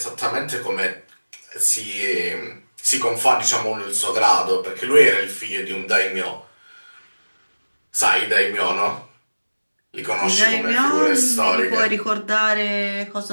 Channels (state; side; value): inverted; both; correlation -1.00